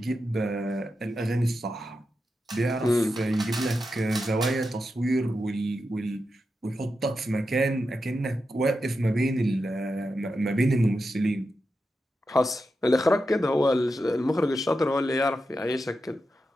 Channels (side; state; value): both; normal; correlation 0.88